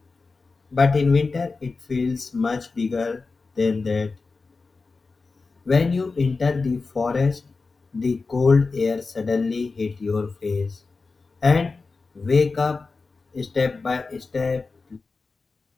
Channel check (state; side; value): quieter; right; 4.1 dB